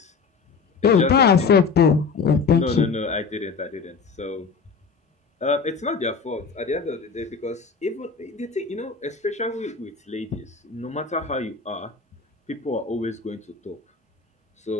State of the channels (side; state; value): right; quieter; 5.0 dB